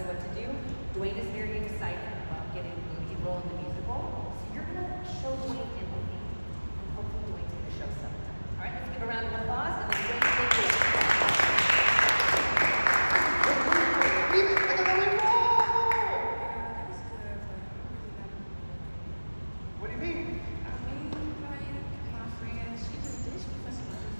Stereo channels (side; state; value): both; inverted; correlation -1.00